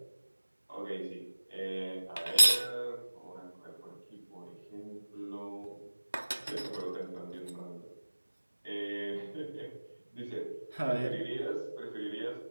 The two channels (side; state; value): both; inverted; correlation -1.00